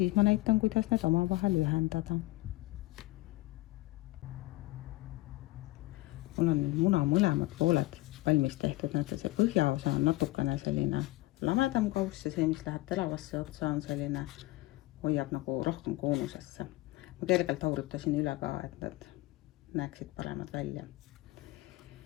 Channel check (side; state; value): right; quieter; 19.7 dB